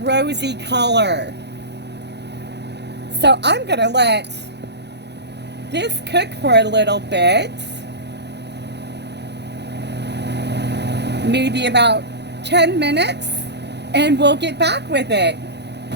rosy color. So I'm going to let this cook for a little bit, maybe about 10 minutes, and we'll get back with it.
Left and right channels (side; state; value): left; late; 0.50 ms